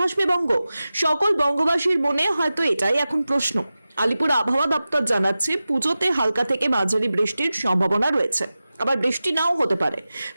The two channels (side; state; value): both; inverted; correlation -0.95